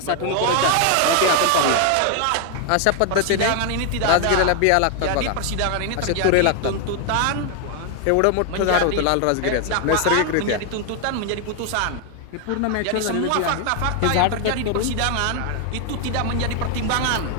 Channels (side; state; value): both; different; correlation 0.00